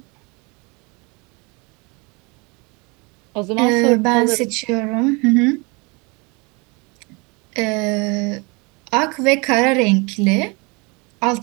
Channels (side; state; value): left; quieter; 28.9 dB